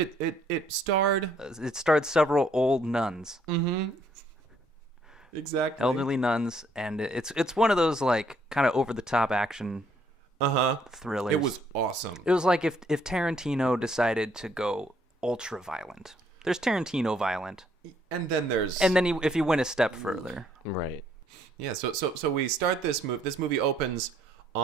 starred It starred several old nuns, exactly elderly nuns, and it's one of those like kind of over the top action thrillers. It was awesome. It was like if Tarantino decided to go ultra violent. There's Tarantino violent, And then there's and then if you went a step further, Right. yeah. So we start this movie. This movie opens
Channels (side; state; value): both; normal; correlation 0.67